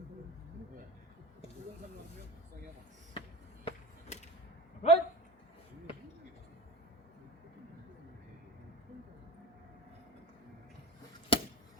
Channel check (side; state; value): both; normal; correlation 0.28